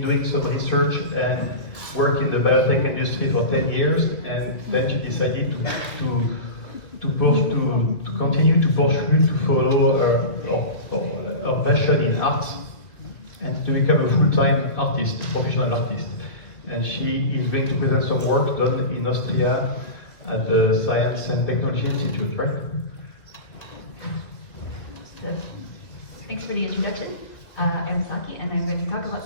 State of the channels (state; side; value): late; right; 2.5 ms